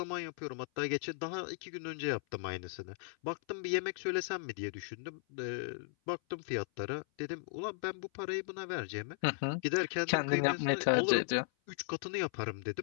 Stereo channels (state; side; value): silent; right; 53 dB below the other